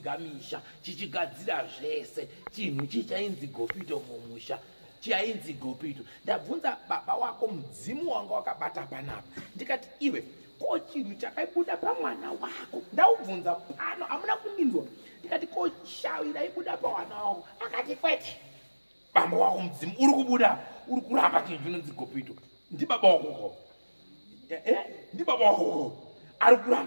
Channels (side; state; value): both; inverted; correlation -1.00